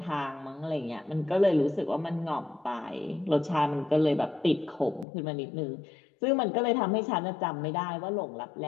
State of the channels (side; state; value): right; drops out; at 5.1 s